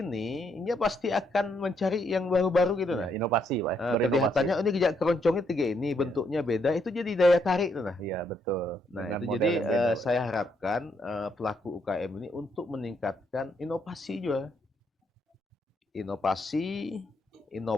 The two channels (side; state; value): both; normal; correlation 0.74